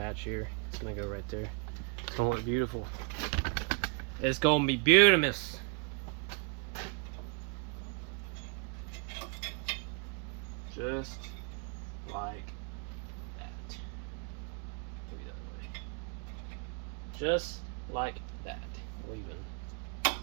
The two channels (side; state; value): left; quieter; 31.6 dB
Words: here. It's going to go right there. It's going to look beautiful. It's going to be beautiful. Just like that. Maybe that way. Just like that. We'll even